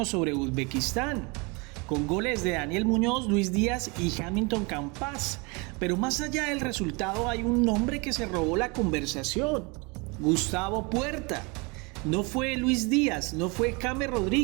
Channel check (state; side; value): quieter; left; 29.1 dB